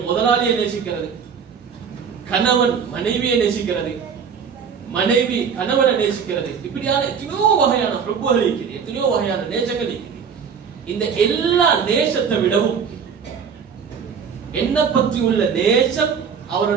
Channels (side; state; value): left; quieter; 6.7 dB